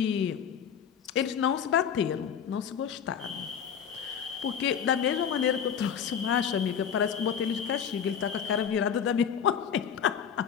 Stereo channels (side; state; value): right; quieter; 7.9 dB